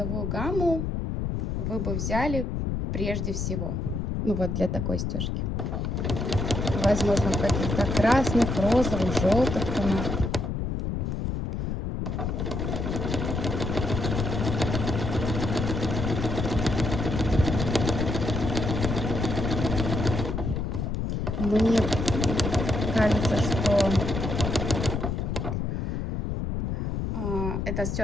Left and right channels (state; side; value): noise; left; rumble, 2 dB below the sound